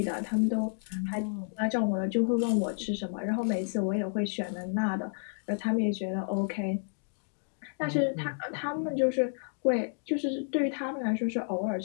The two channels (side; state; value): right; silent; digital silence